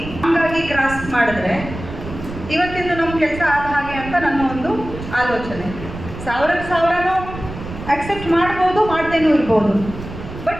ಹಂಗಾಗಿ ಕ್ರಾಸ್ ಮಾಡಿದ್ರೆ ಇವತ್ತಿಂದು ನಮ್ಮ ಕೆಲಸ ಆದ ಹಾಗೆ ಅಂತ ನನ್ನ ಒಂದು ಆಲೋಚನೆ. 1000 ಅಕ್ಸೆಪ್ಟ್ ಮಾಡ್ಬೋದು, ಮಾಡ್ದೇನೂ ಇರ್ಬೋದು.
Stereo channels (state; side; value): noise; right; rumble, 11 dB below the sound